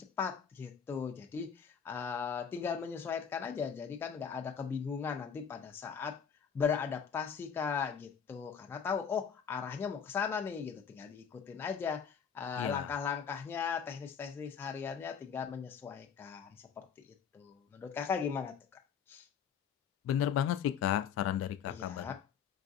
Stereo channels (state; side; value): quieter; right; 7.2 dB